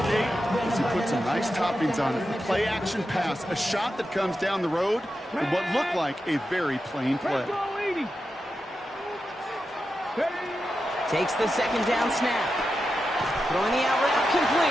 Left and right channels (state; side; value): normal; both; correlation 0.89